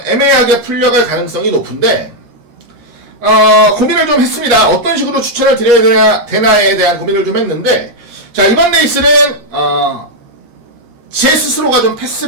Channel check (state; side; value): late; left; 13 ms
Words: 애매하게 풀려갈 가능성이 높은데, 고민을 좀 했습니다. 어떤 식으로 추천을 드려야 되나에 대한 고민을 좀 했는데, 자, 이번 레이스는, 제 스스로가 좀